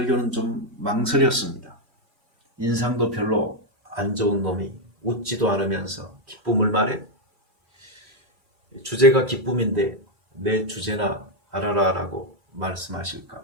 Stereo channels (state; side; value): late; left; 2.3 ms